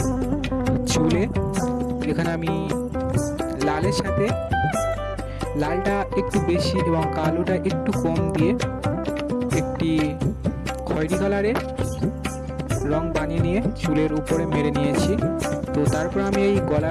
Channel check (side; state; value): both; identical; correlation 1.00